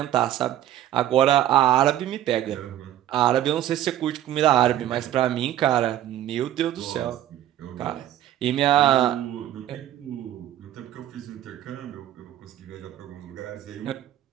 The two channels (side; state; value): left; quieter; 12.2 dB